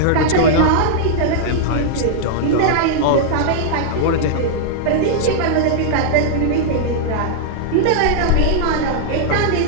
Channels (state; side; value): different; both; correlation -0.02